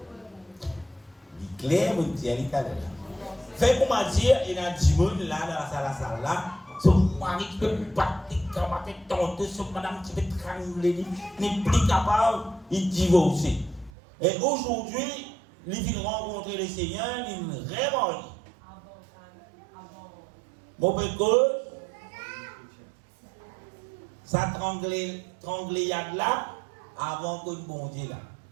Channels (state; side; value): drops out; left; at 13.9 s